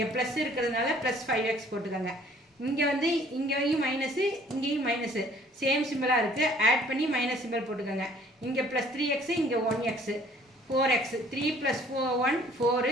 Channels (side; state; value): both; normal; correlation 0.56